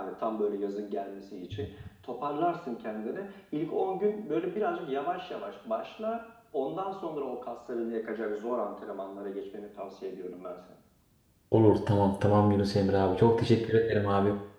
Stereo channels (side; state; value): both; identical; correlation 1.00